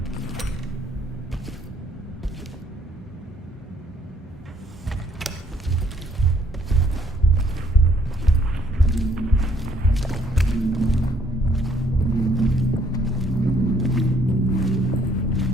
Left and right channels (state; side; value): normal; both; correlation 0.66